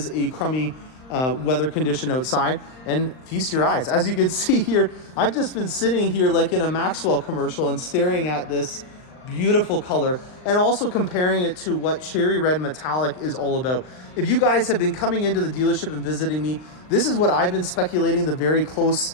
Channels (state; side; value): late; right; 39 ms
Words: a crummy weather condition outside. And feast your eyes. As you can see here, I've just been sitting here like in a Maxwell commercial and staring at this beautiful color, and also comparing it to what Cherry Red Metallic is all about. If you guys have been coming into the dealership and visiting me, this is what I've been speculating the very close